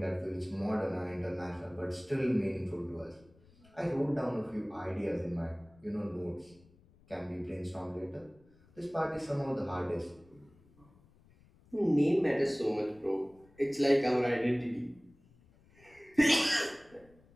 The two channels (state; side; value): noise; left; rumble, 28 dB below the sound